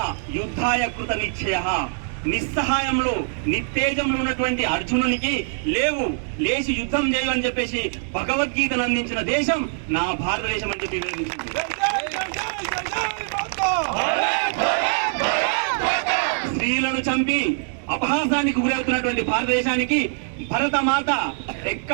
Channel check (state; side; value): silent; left; 63 dB below the other